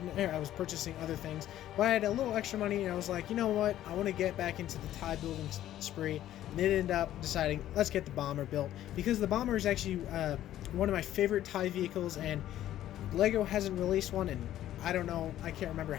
was purchasing other things, but I had a little extra money, and I was like, you know what, I want to get back into the TIE building spree, and it ended up deciding, let's get the bomber built, because the bomber is actually one of my favorite TIE vehicles, and Lego hasn't released one in, I don't know, I can't remember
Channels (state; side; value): quieter; right; 12.7 dB